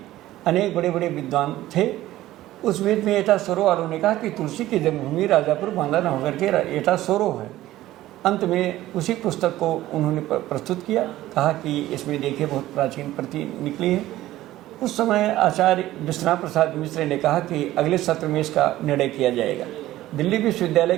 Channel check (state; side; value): quieter; left; 15.2 dB